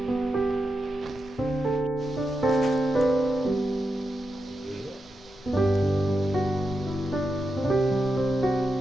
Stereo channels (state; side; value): normal; both; correlation 0.87